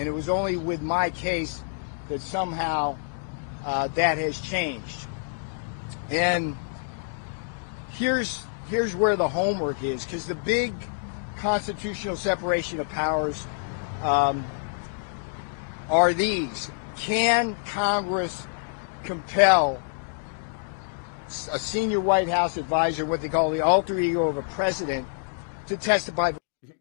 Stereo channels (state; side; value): silent; right; digital silence